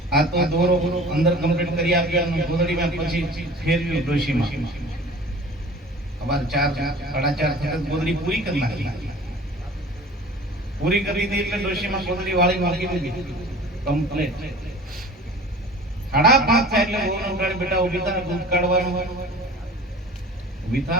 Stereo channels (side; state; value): both; normal; correlation 0.42